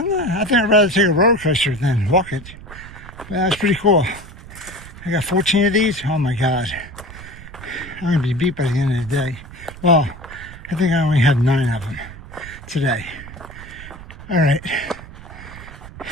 I'd rather take a roller coaster than walk it. But that was pretty cool. I got 14 of these. Oh my God. I'm going to be beat by the end of the day. Well, I think I only had 9 of them today. All right.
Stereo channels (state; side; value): noise; right; rumble, 16 dB below the sound